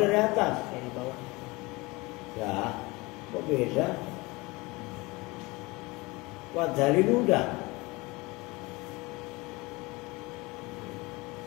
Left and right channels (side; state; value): right; quieter; 23.7 dB